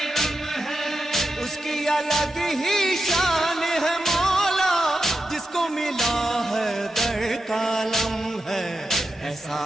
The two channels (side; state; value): both; normal; correlation 0.89